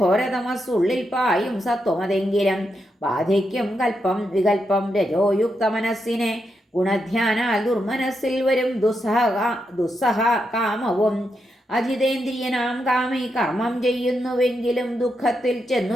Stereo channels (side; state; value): both; normal; correlation 0.83